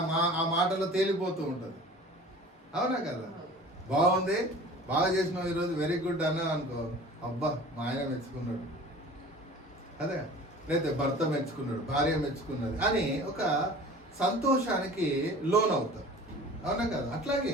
ఆ మాటలో తేలిపోతూ ఉంటుంది, అవునా కదా? బాగుంది, బాగా చేసినావు ఈరోజు, వెరీ గుడ్ అన్నా అనుకో, అబ్బా మా ఆయన మెచ్చుకున్నాడు, అదే లేకపోతే భర్త మెచ్చుకున్నాడు, భార్య మెచ్చుకున్నది అని ఒక సంతోషానికి లోన్ అవుతారు, అవునా కదా?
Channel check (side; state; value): both; normal; correlation 0.43